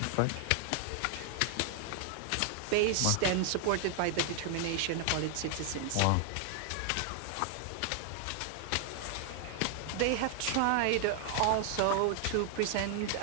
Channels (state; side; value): different; both; correlation 0.00